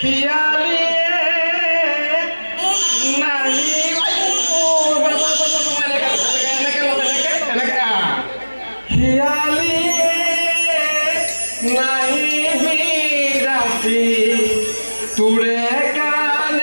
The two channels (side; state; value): both; inverted; correlation -1.00